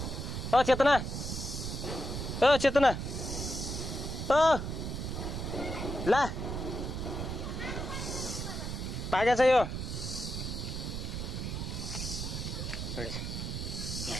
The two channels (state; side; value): noise; right; rumble, 4 dB below the sound